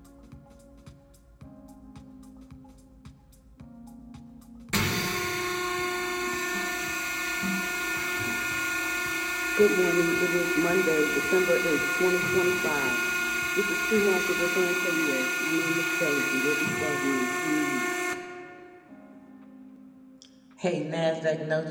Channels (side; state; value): both; identical; correlation 1.00